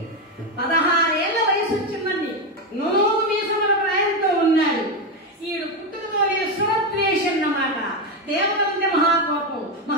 16 ఏళ్ల వయసు వచ్చిందని నూనె మీసముల ప్రాయంతో ఉన్నాడు. ఈడు పుట్టుకతోనే శ్రోత్రేషం అన్నమాట. దేవతంటే మహాకోపం,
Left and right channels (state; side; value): normal; both; correlation 0.11